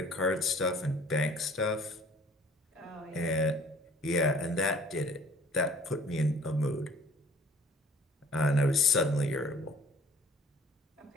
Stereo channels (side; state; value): both; normal; correlation 0.53